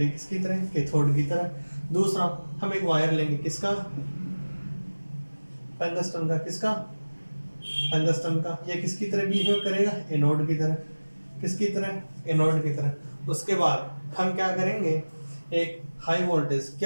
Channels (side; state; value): both; inverted; correlation -1.00